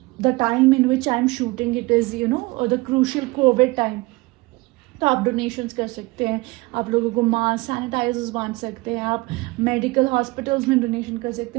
the time in which I am shooting it is the crucial Covid time, तो आप डोनेशंस कर सकते हैं, आप लोगों को मास्क, सैनिटाइजर्स बांट सकते हैं, आप मेडिकल हॉस्पिटल्स में डोनेशन कर सकते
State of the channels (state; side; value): quieter; left; 23.0 dB